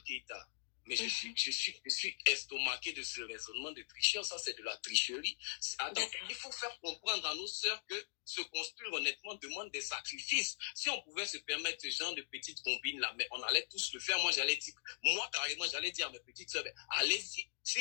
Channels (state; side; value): silent; right; digital silence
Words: Keïta. Mais je suis estomaqué de ce raisonnement de tricheur. Ça, c'est de la tricherie. Attends, il faut faire comprendre à nos sœurs que se construire honnêtement demande des sacrifices. Si on pouvait se permettre ce genre de petites combines là, mais on allait tous le faire. Moi, carrément, j'allais dire à mes petites sœurs,